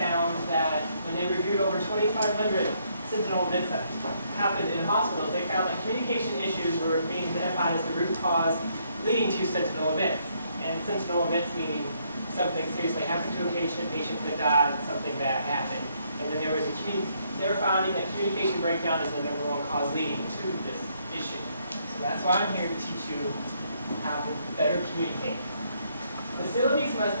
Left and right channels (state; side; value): inverted; both; correlation -0.72